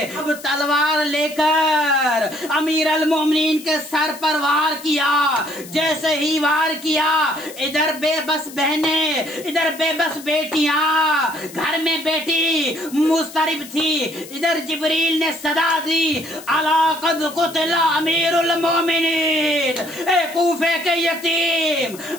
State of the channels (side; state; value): left; noise; hiss, 17 dB below the sound